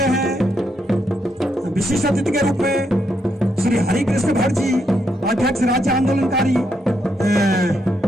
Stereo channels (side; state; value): both; normal; correlation 0.78